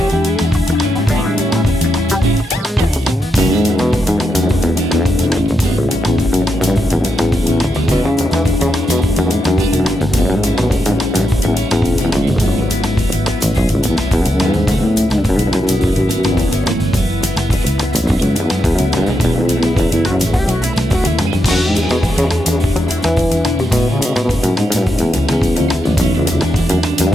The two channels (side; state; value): both; normal; correlation 0.84